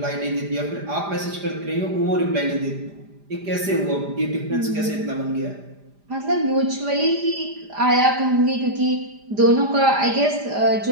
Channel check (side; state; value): left; late; 5.0 ms